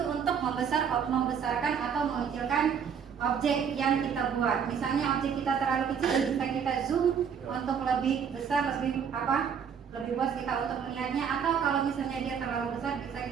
untuk membesarkan atau mengecilkan objek yang kita buat. Misalnya objek kita terlalu kecil, bisa kita zoom untuk lebih besar, lebih luas kita untuk melihatnya. Atau kalau misalnya dia terlalu besar, bisa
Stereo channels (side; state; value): left; quieter; 7.2 dB